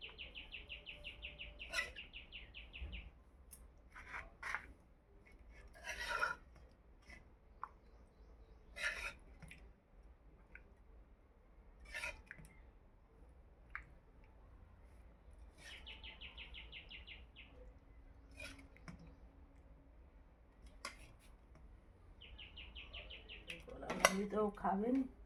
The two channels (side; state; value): both; identical; correlation 1.00